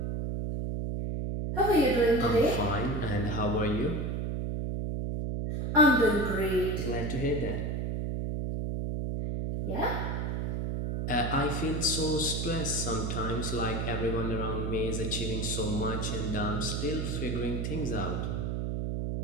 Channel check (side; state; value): right; noise; hum, 1 dB below the sound